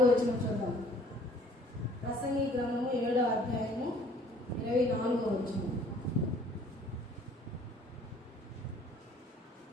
వచనం చూద్దాం. ప్రసంగి గ్రంథము 7వ అధ్యాయము 24 వచనం.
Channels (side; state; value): both; normal; correlation 0.56